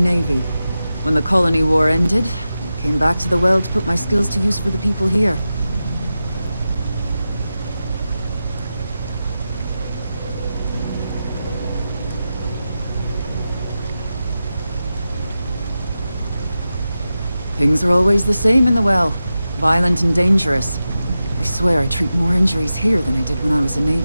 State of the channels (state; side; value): inverted; both; correlation -0.92